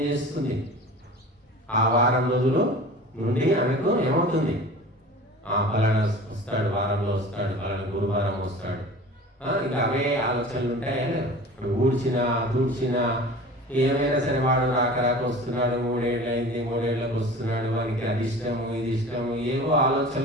చేస్తుంది? ఆ వారం రోజులు నుండి ఆమెకు ఏమవుతుంది? ఫలానా వస్తాడు, వారంలో వస్తాడు, ఫలానా గురువారం వస్తాడు. ఇక అవే ఆలోచనలు ఉంటాయా? ఇప్పుడు దూడ్చినా ఏమైనా సరే వాడు రాక వస్తున్నాడు, 3 ఏళ్ళు అయింది, 3 ఏళ్ళకి వస్తున్నాడు, వానికి అది ఇష్టము, ఇది ఇష్టము, ఏవో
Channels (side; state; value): both; normal; correlation 0.39